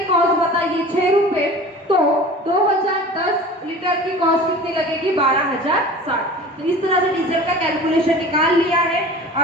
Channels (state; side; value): normal; both; correlation 0.39